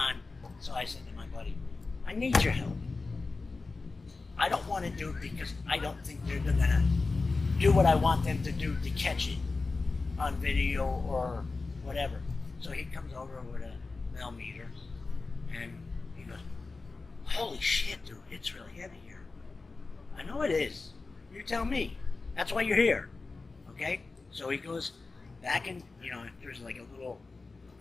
So I said to my buddy, I need your help. I don't want to do it because I don't think they're going to do what I want them to do to catch it on video or whatever. So he comes over with a millimeter and he goes, holy shit, dude, it's really heavy here. I know it is. You tell me. That's why you're here. Okay? So he goes back in, there's like a little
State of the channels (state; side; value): quieter; right; 3.8 dB